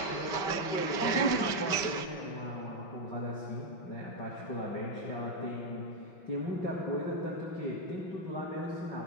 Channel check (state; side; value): late; right; 5.2 ms